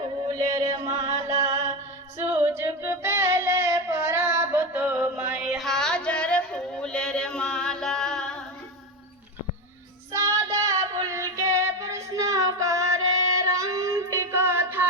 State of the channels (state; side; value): normal; both; correlation 0.17